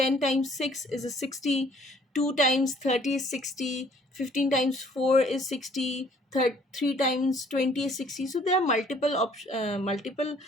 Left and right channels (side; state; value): both; normal; correlation 0.59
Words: times 6 is a 60, 2 times 30 is 60, 15 times 4 is 60, 3 times 20 is 60. So there are multiple